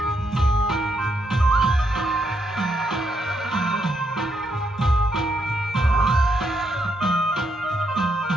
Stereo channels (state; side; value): normal; both; correlation 0.78